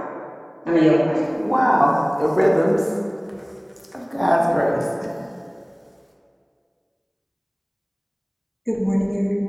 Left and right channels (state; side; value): identical; both; correlation 1.00